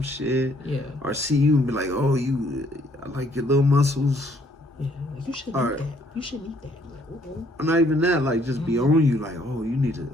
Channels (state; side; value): normal; both; correlation 0.65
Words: shit. Yeah. Or see you and be like, "Oh, I like your little muscles." Yeah, you should eat that. You should eat that. Or not even that, like just be on you, like, oh, you need to.